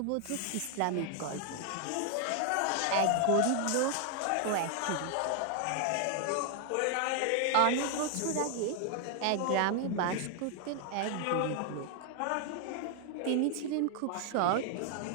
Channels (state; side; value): different; both; correlation 0.00